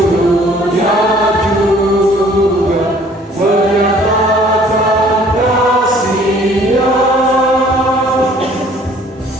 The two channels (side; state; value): both; normal; correlation 0.55